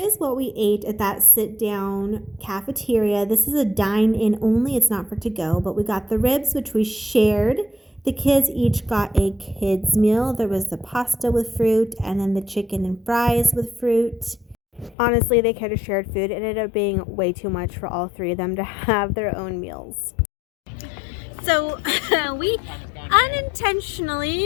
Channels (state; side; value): drops out; right; at 15.0 s